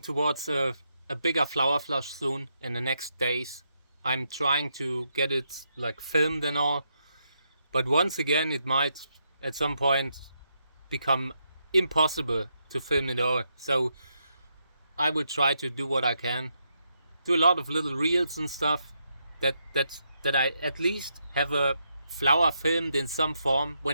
towards a bigger flower flush soon in the next days. I'm trying to get it like filmed and all, but once again it might at some point become impossible to film it all. So I will try to do what I can, do a lot of little reels and stuff that I at least have a flower filmed in some form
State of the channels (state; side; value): inverted; both; correlation -0.80